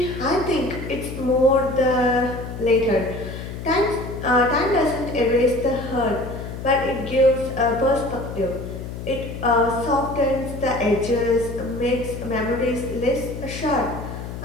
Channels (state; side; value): noise; left; hum, 9 dB below the sound